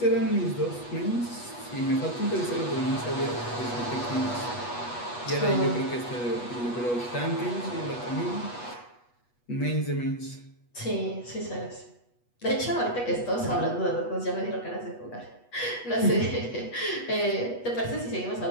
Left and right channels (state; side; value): late; right; 8.2 ms